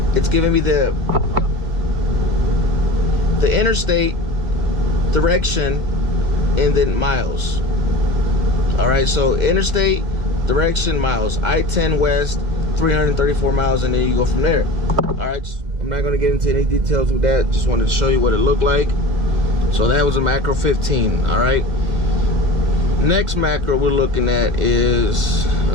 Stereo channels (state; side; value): late; left; 2.0 ms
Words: It's giving me the interstate direction and then miles. All right, so interstate direction, miles. I-10 west, 334 miles, and then you go from there. All right, I'm not going to get into any details with that. Just wanted to show you what it looked like. So that was a macro 15. All right, next macro we're looking at is